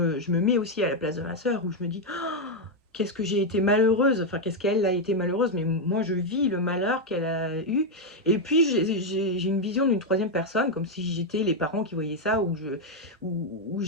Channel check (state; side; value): normal; both; correlation 0.02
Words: mets aussi à la place de ma sœur où je me dis qu'est-ce que j'ai été malheureuse, enfin qu'est-ce qu'elle a été malheureuse, mais moi je vis le malheur qu'elle a eu. Et puis j'ai une vision d'une troisième personne, comme si j'étais les parents qui voyaient ça, où